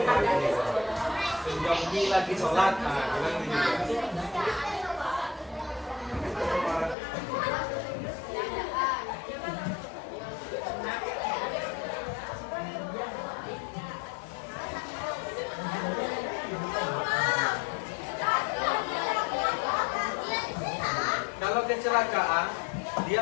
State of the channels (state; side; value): drops out; right; at 7.0 s